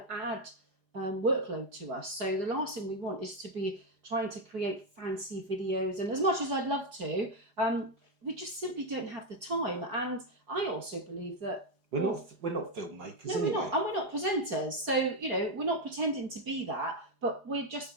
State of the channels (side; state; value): left; late; 4.9 ms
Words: add workload to us. So the last thing we want is to be trying to create fancy videos. And as much as I'd love to, we just simply don't have the time. And I also believe that we're not filmmakers. No, anyway. we're not, and we're not presenters. So we're not pretending to be that, but we're just